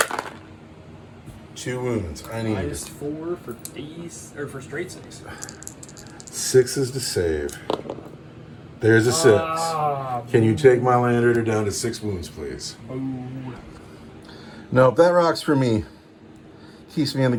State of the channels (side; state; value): both; identical; correlation 1.00